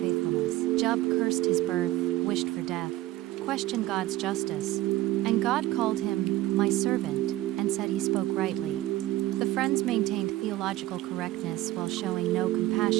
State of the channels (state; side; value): quieter; left; 16.0 dB